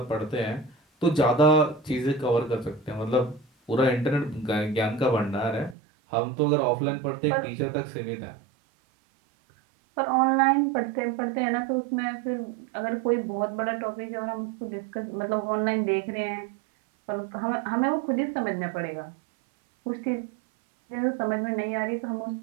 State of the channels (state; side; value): drops out; left; at 5.8 s